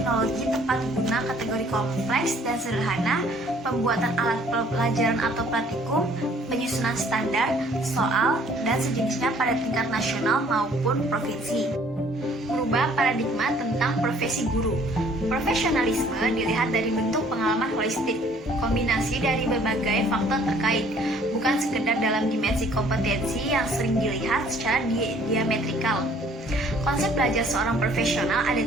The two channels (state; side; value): normal; both; correlation 0.58